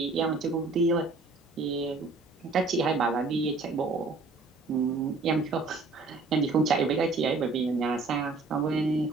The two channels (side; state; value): left; quieter; 3.8 dB